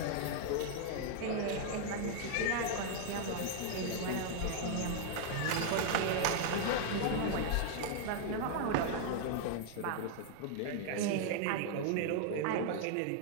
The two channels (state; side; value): different; both; correlation 0.00